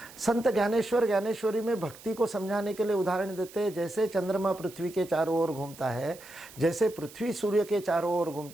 संत ज्ञानेश्वर ज्ञानेश्वरी में भक्ति को समझाने के लिए उदाहरण देते हैं, जैसे चंद्रमा पृथ्वी के चारों ओर घूमता है, जैसे पृथ्वी सूर्य के चारों ओर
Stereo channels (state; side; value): noise; right; hiss, 19 dB below the sound